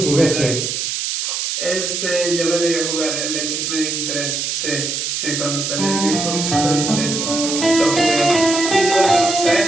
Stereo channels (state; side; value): noise; right; hiss, 2 dB below the sound